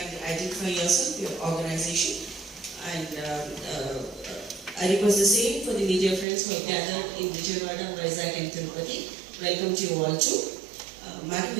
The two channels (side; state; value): left; drops out; at 6.2 s